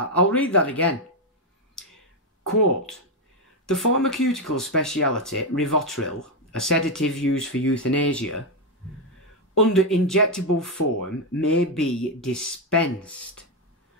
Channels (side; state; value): both; normal; correlation 0.05